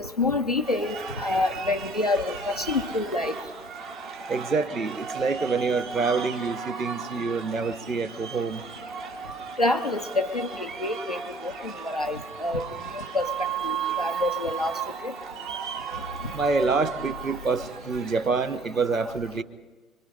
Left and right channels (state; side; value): normal; both; correlation 0.54